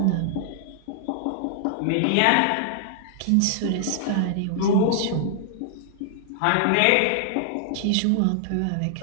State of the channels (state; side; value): different; both; correlation -0.01